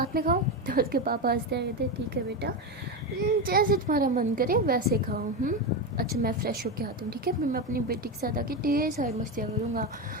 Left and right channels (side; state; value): both; normal; correlation 0.14